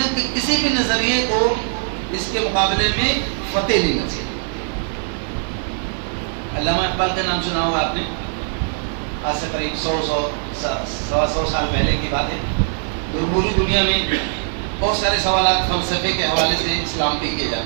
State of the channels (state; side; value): silent; left; digital silence